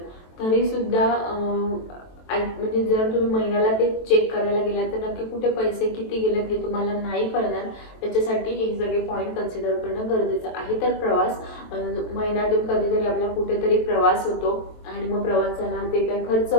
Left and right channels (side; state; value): right; late; 23 ms